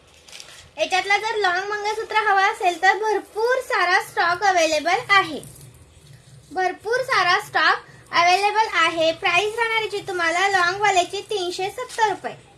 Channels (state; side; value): identical; both; correlation 1.00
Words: ह्याच्यातला जर लॉंग मंगळसूत्र हवा असेल तर भरपूर सारा स्टॉक अवेलेबल आहे। भरपूर सारा स्टॉक अवेलेबल आहे। प्राइस राहणार आहे तुम्हाला लॉंग वाल्याची 370 रुपये।